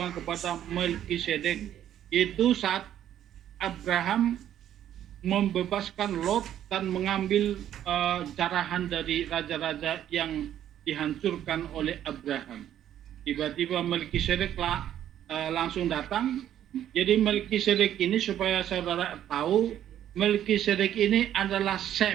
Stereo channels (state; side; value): quieter; left; 11.0 dB